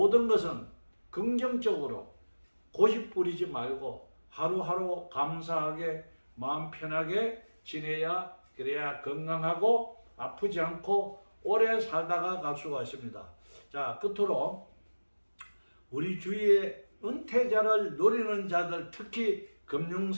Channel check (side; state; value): both; inverted; correlation -1.00